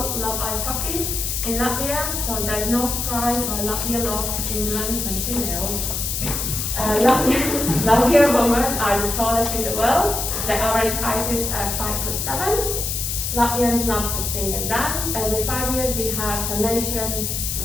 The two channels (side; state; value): left; noise; hiss, 2 dB below the sound